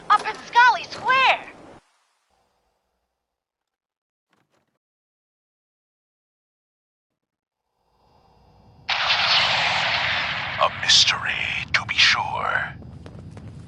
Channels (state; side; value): identical; both; correlation 1.00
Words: Up in Scully Square? A mystery, to be sure.